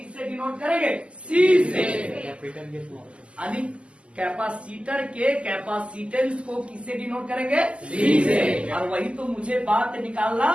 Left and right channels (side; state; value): left; late; 0.055 ms